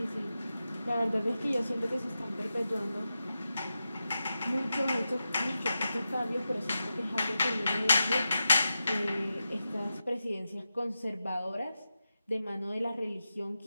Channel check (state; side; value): inverted; both; correlation -0.91